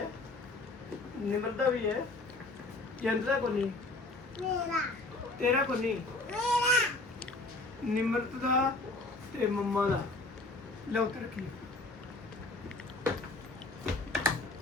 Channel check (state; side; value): quieter; right; 3.1 dB